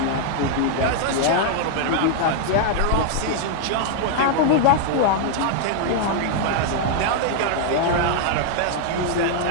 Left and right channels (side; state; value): both; different; correlation 0.00